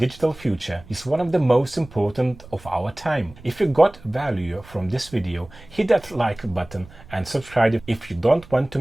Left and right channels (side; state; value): right; noise; rumble, 21 dB below the sound